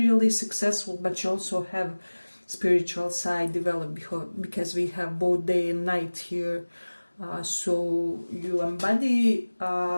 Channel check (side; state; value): both; inverted; correlation -1.00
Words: successful, but you also have spiritual side developed, because we have both day and night here. So you embody